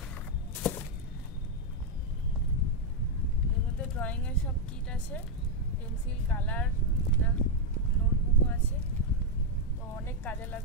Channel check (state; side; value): normal; both; correlation 0.00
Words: এর মধ্যে ড্রয়িং এর সব কিট আছে, পেন্সিল, কালার, নোটবুকও আছে। তো অনেক কাজে